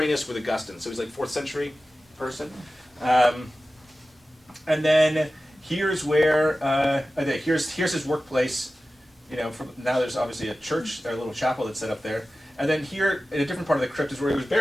with Augustine, so he's like 4th century person. And then here's where here's his workplace. You know, now there's obviously a church, a little chapel that's set up there. And then here, in a different part of the crypt, is where he was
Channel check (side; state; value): both; normal; correlation 0.95